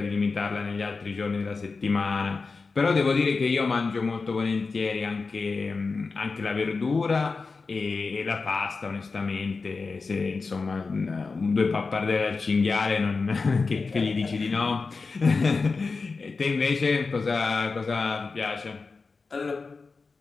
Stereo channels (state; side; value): quieter; right; 4.3 dB